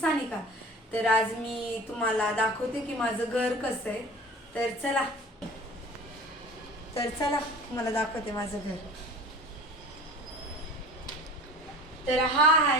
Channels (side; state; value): both; normal; correlation 0.41